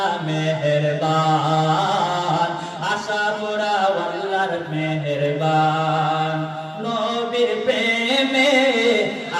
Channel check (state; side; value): identical; both; correlation 1.00